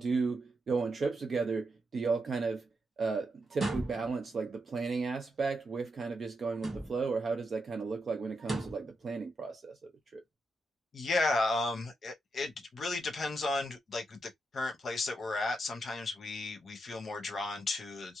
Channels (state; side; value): normal; both; correlation 0.84